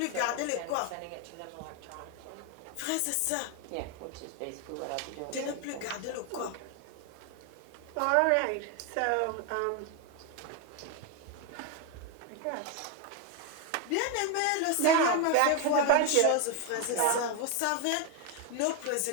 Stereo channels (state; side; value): different; both; correlation 0.01